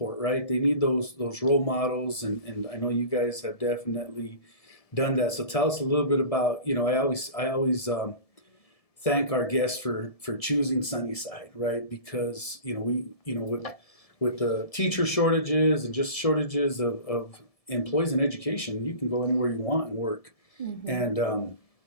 right? They need those role models, and I know you guys have definitely done that. So tell us a little bit about, you know, I always thank our guests for choosing Sunnyside, right? Because, you know, we, you know, with the teacher shortages and just shortages of employees in education, you can go anywhere you want and work, and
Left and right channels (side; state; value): right; late; 1.7 ms